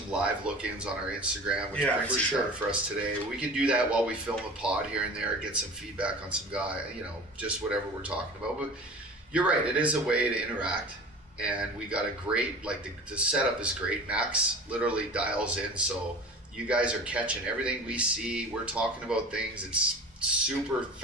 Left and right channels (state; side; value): normal; both; correlation 0.38